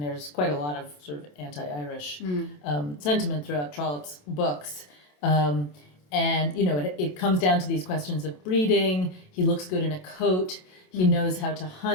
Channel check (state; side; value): late; right; 27 ms